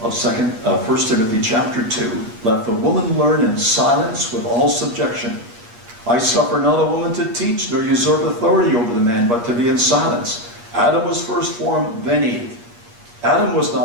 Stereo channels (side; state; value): left; late; 8.5 ms